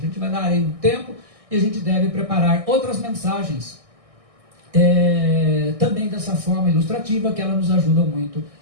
vai dar aí um tempo e a gente deve preparar outras mensagens também dessa forma ilustrativa, que ela nos ajuda muito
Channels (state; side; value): late; left; 1.6 ms